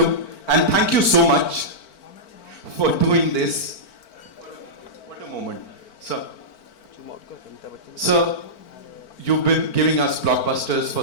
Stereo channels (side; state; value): right; late; 4.5 ms